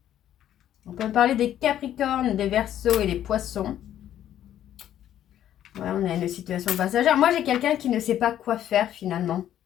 On peut parler des Capricornes, des Verseaux et des Poissons. Ouais, on a une situation passagère. Moi, j'ai quelqu'un qui ne sait pas quoi faire, finalement.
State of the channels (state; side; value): quieter; right; 11.3 dB